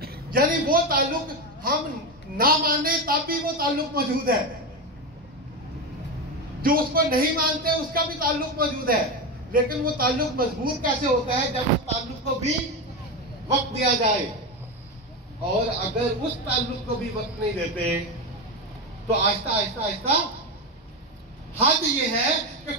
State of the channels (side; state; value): both; normal; correlation 0.15